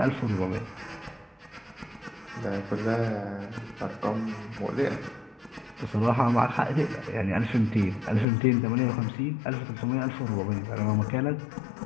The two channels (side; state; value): right; drops out; at 8.2 s